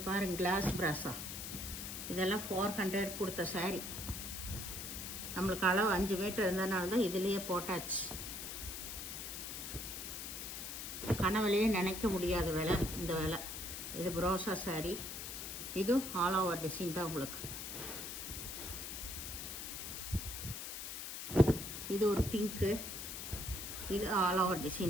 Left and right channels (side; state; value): left; noise; hiss, 6 dB below the sound